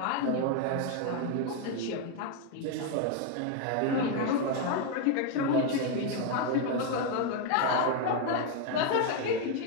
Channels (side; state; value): both; different; correlation 0.01